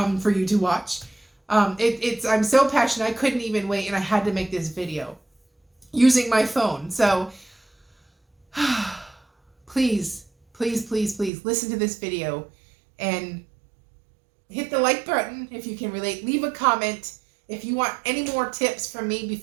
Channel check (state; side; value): drops out; left; at 11.3 s